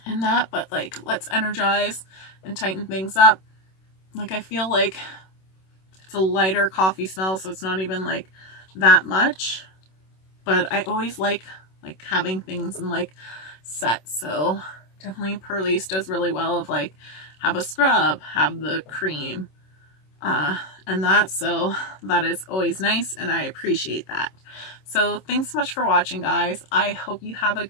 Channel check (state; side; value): late; right; 26 ms